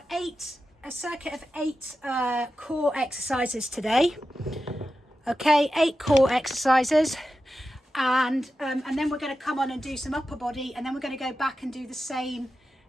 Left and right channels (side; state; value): both; normal; correlation 0.92